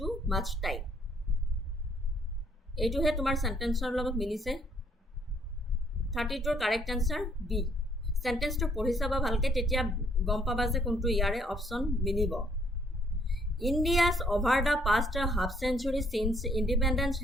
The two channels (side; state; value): both; normal; correlation 0.66